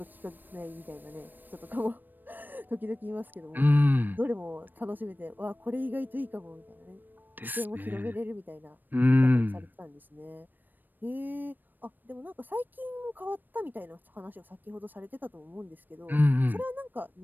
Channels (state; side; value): late; left; 0.091 ms